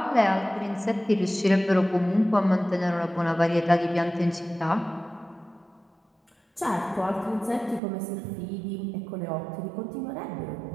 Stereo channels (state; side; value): drops out; left; at 7.8 s